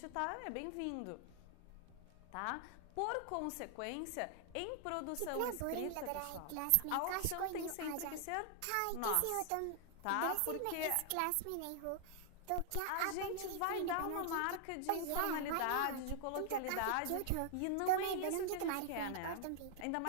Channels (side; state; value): both; different; correlation 0.00